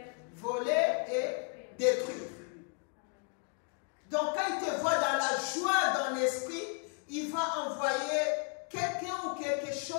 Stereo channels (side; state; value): right; quieter; 38.3 dB